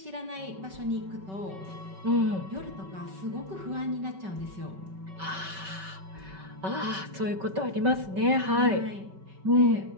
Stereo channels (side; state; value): left; late; 5.3 ms